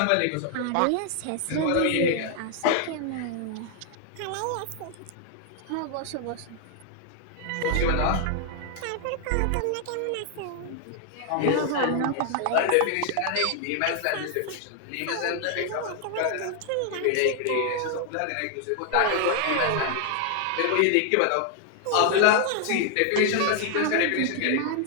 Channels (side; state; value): both; different; correlation 0.00